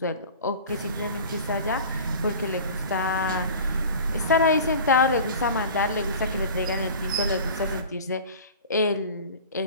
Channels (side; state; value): both; inverted; correlation -0.39